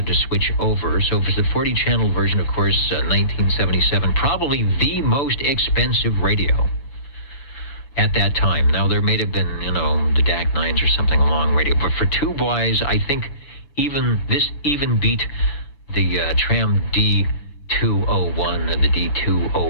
to switch over. So if it's a 40 channel version, of course, 1977, probably the most expensive radio at that time. Now, there may have been, the DAC 9s or something along radio. But for tube-wise, I think this beat the Tram D201 or the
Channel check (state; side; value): late; right; 6.0 ms